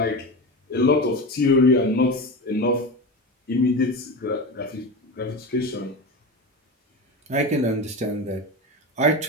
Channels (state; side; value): normal; both; correlation 0.24